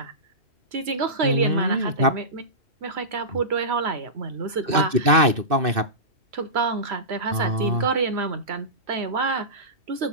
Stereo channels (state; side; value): late; left; 2.6 ms